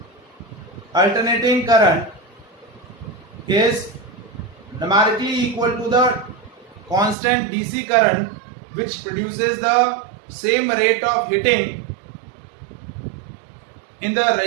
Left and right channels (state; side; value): drops out; left; at 7.2 s